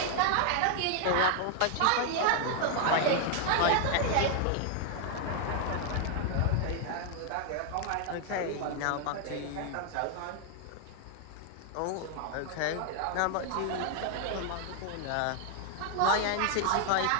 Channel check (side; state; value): both; different; correlation 0.00